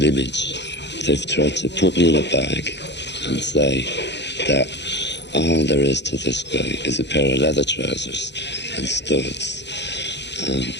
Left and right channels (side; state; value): right; late; 0.51 ms